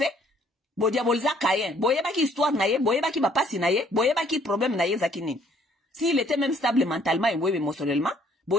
Bo diaboliza Caïn. Boyeba ki histoire na ye, boyeba ki bapasi na ye, boyeba ki problème na ye zakini. S'il était même stable mentalement et émotionnellement,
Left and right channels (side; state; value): both; normal; correlation 0.62